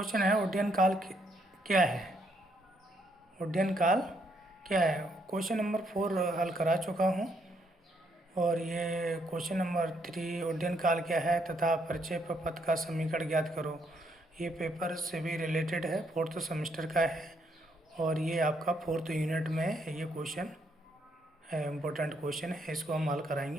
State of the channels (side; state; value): both; normal; correlation 0.73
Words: है उड्डयन काल क्या है। उड्डयन काल क्या है। क्वेश्चन नंबर 4 हल करा चुका हूँ और ये क्वेश्चन नंबर 3 उड्डयन काल क्या है तथा प्रक्षेप पथ का समीकरण ज्ञात करो। ये पेपर से भी रिलेटेड है, फोर्थ सेमेस्टर का है और ये आपका फोर्थ यूनिट में ये क्वेश्चन है, इम्पोर्टेंट क्वेश्चन है, इसको हम हल